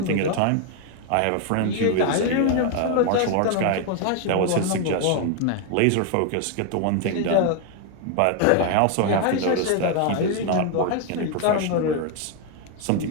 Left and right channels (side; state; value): both; different; correlation 0.01